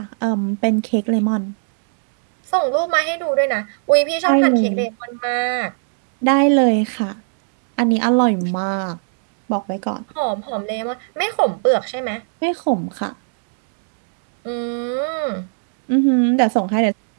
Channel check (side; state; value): left; silent; digital silence